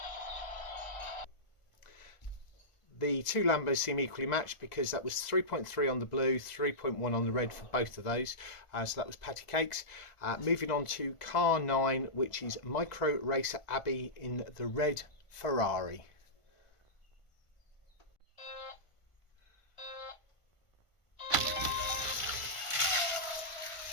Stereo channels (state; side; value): late; right; 1.5 ms